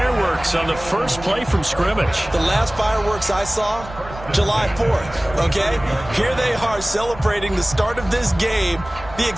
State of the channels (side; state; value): right; noise; rumble, 15 dB below the sound